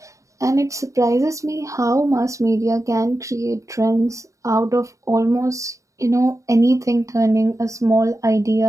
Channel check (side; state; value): left; late; 0.15 ms